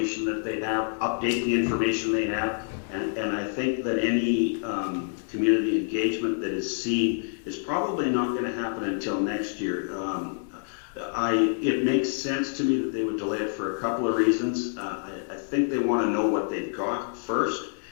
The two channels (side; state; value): right; silent; digital silence